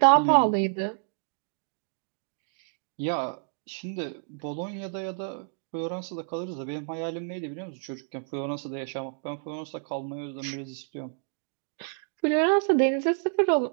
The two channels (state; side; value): silent; left; 58 dB below the other